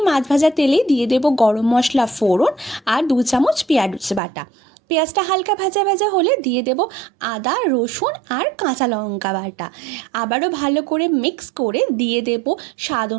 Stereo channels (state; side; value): drops out; left; at 4.2 s